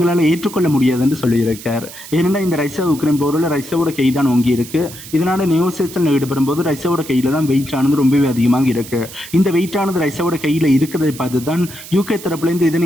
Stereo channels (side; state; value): right; noise; hiss, 15 dB below the sound